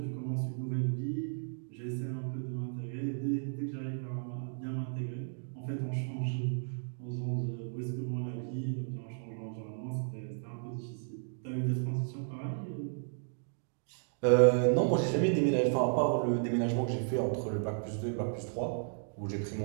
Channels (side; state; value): left; silent; digital silence